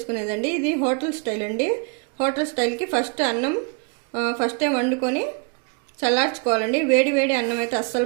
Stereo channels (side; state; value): left; quieter; 33.2 dB